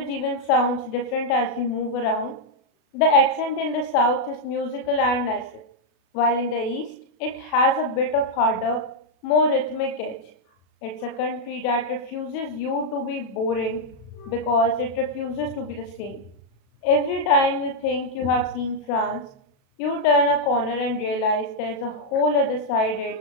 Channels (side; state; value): right; late; 37 ms